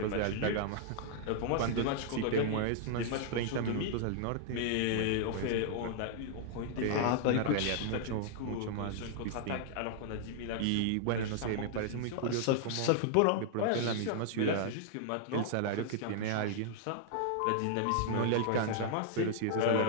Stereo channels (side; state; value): both; different; correlation -0.01